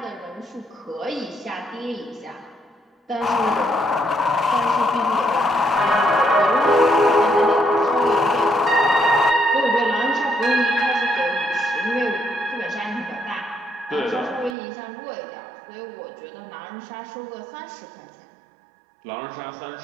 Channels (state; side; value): drops out; left; at 14.6 s